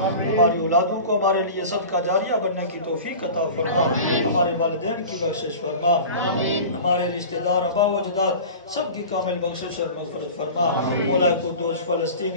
ہماری اولادوں کو ہمارے لیے صدقہ جاریہ بننے کی توفیق عطا فرما، ہمارے والدین کی بخشش فرما، ہمارے رشتہ دار آبا و اجداد سب کی کامل بخشش اور مغفرت فرما، مولا قدوس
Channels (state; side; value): inverted; both; correlation -0.36